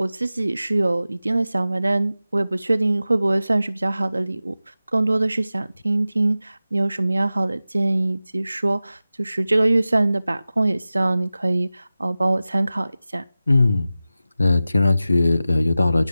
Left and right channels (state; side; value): inverted; both; correlation -0.95